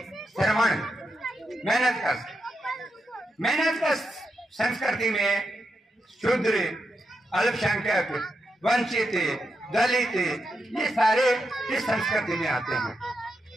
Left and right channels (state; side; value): normal; both; correlation 0.85